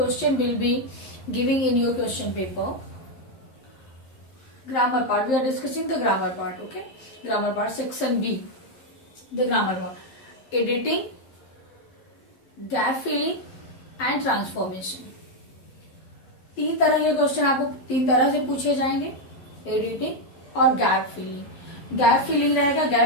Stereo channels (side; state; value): right; late; 12 ms